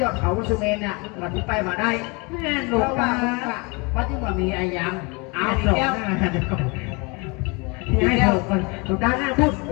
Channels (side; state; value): right; quieter; 29.2 dB